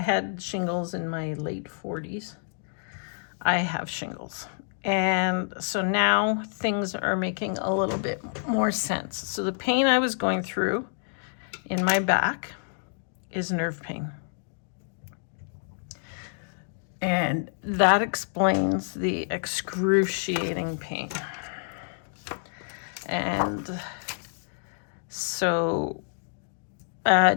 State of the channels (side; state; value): right; silent; digital silence